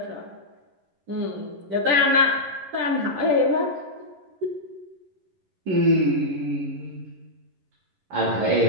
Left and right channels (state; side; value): late; left; 11 ms